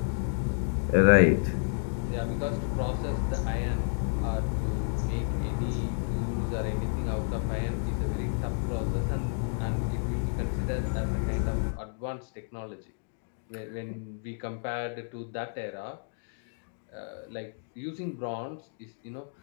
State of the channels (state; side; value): silent; right; digital silence